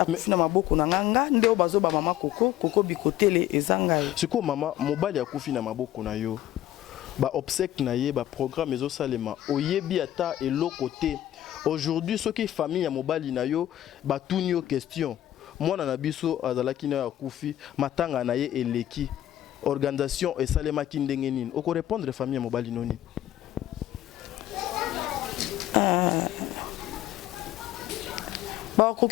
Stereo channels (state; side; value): quieter; right; 13.1 dB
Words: na maboko na nganga, ndeo bazo ba mama koko bikotele Ezanga. C'est quoi, maman? Mobali ya kufi na maboko na yo. Ba obsèque na ye, ba programme ezo salema. Oyebi ata et l'autre côté. Aujourd'hui, ce qui est famille à mobali na yo, ba tuni yo question. Moi na biso azalaki na ya kufi, matanga na ye eleki. Organisation et salema ki ndenge nini. Oko répondre famille à mobali noni. Ba